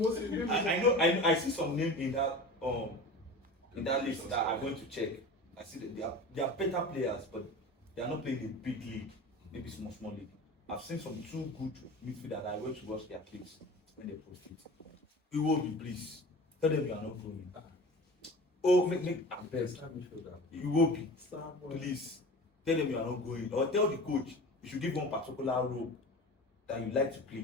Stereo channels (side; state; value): both; normal; correlation 0.35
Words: bring I know. I see some name in that list that I'm going to check. I see that they are better players, but they are not playing in big league, maybe small league. I've seen some two good midfielders. I went to watch their clips when they post it. You will be please. Tell them you are not going. Oh, make best. You will be. Please. Tell them you are not going. Or tell the coach you should give one particular role that you like to